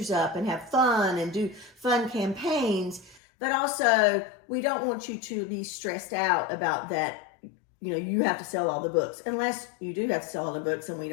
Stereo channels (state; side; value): drops out; right; at 3.2 s